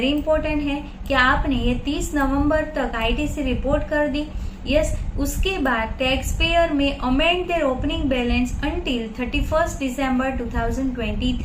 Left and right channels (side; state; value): both; identical; correlation 1.00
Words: important है कि आपने ये 30 नवंबर तक आईटीसी रिपोर्ट कर दी। यस, उसके बाद टैक्स पेयर में amend their opening balance until 31 दिसंबर